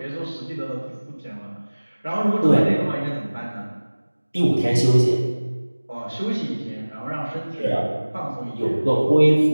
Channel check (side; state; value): both; inverted; correlation -1.00